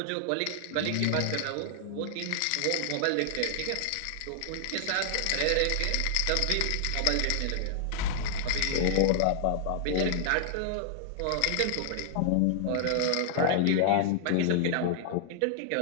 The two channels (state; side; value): different; both; correlation -0.01